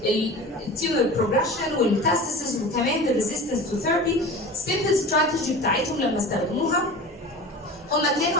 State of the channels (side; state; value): both; normal; correlation 0.34